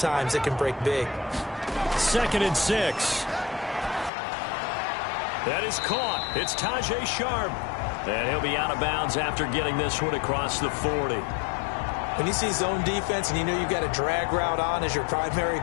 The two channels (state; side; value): drops out; right; at 4.1 s